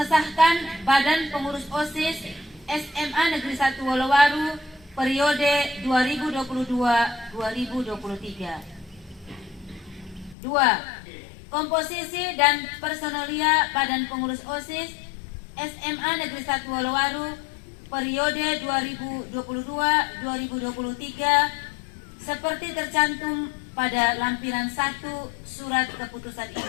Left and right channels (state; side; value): drops out; right; at 10.4 s